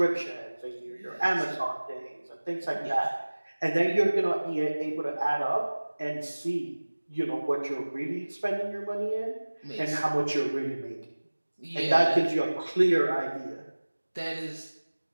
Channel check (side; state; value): both; inverted; correlation -1.00